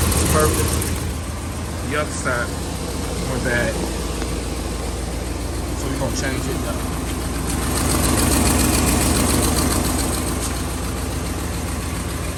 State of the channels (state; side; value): identical; both; correlation 1.00